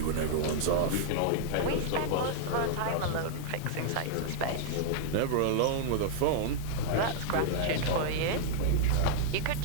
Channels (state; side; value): different; both; correlation -0.01